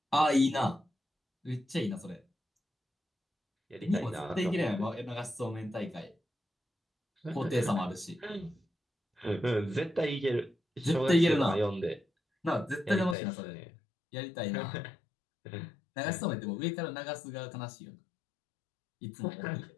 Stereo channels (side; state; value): right; drops out; at 13.2 s